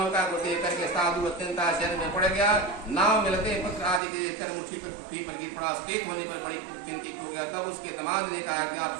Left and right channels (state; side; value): drops out; left; at 4.0 s